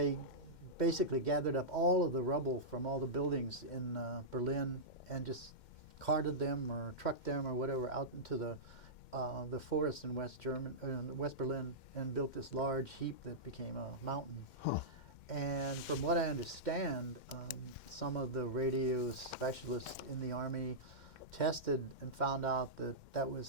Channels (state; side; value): late; right; 2.1 ms